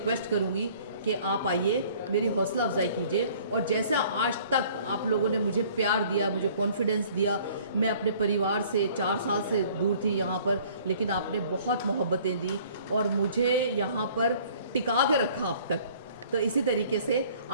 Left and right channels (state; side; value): inverted; both; correlation -0.54